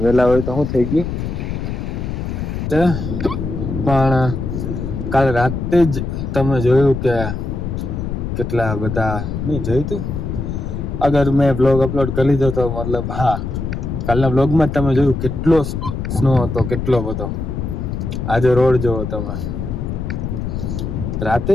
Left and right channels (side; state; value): left; noise; rumble, 4 dB below the sound